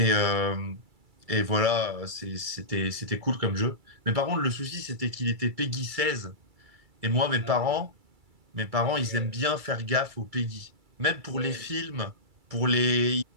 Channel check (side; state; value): left; late; 2.3 ms